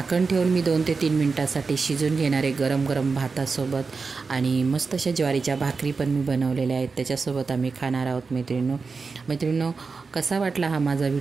ठेवून मी 2 ते 3 मिनटासाठी शिजून घेणार आहे, गरम गरम भातासोबत। आणि मस्त अशा ज्वारीच्या भाकरी पण मी बनवलेल्या आहेत, त्याच्यासोबत आम्ही खाणार आहोत मैत्रिणींनो। कसा वाटला हा माझा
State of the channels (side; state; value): left; quieter; 4.6 dB